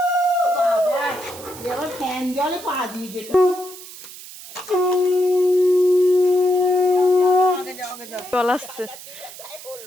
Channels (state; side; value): noise; right; hiss, 15 dB below the sound